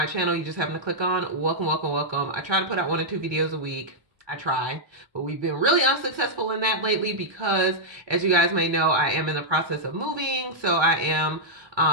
channel, you just happen to click on. Welcome, welcome, welcome. I try to put out 1 or 2 videos a week. I try, but we've been really unsuccessful in that lately because, as you guys may know, I am in the process of moving. So I am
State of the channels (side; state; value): left; late; 1.2 ms